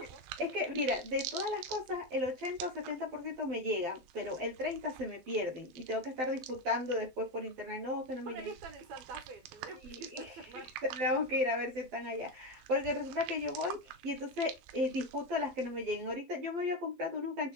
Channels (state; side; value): late; left; 12 ms